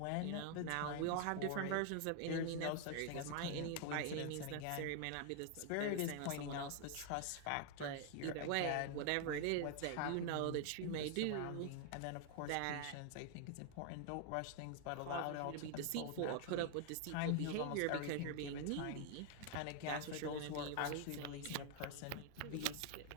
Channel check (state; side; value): different; both; correlation 0.00